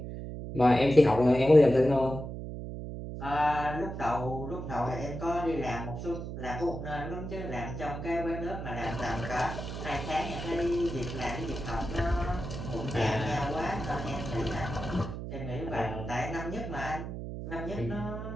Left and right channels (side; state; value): right; noise; hum, 7 dB below the sound